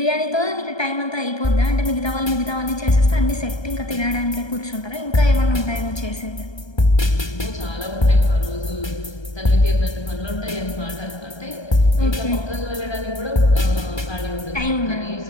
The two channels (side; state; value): right; late; 1.3 ms